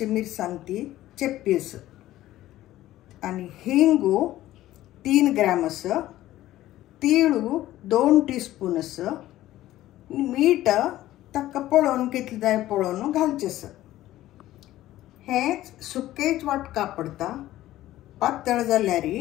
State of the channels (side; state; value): right; quieter; 14.8 dB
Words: मिरसांग ती चेप्पी आणि हिंगू 3 ग्राम्स, तीळू 2 टीस्पून, मीठ ताका पळोवन कितले जाय पळोवन घालचें। हें सुकेच वाटका पडटा, पातळ जाल्यार